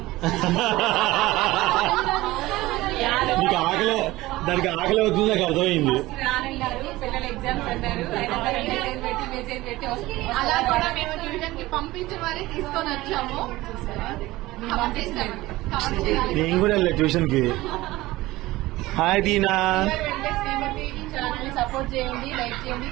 దానికి ఆకలి అవుతుంది, నాకు అర్థమైంది. రానన్నారు, పిల్లలు ఎగ్జామ్స్ అన్నారు, మెసేజ్ పెట్టి అలా కూడా మేము ట్యూషన్ కి పంపించి మరీ తీసుకొని వచ్చాము. నేను కూడా వెళ్ళా ట్యూషన్ కి. హాయ్ దీనా. సపోర్ట్ చేయండి, లైక్ చేయండి,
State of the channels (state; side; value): quieter; left; 18.4 dB